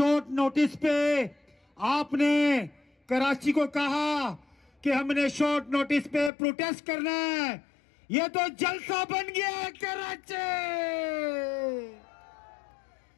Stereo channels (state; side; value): drops out; right; at 6.3 s